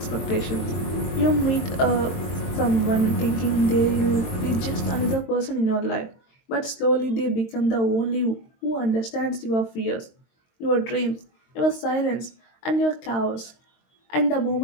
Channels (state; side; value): late; right; 22 ms